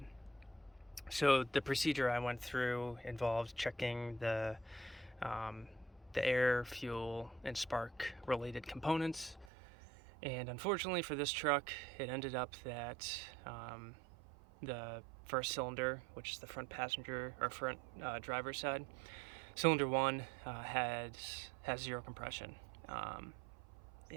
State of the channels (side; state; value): left; drops out; at 9.5 s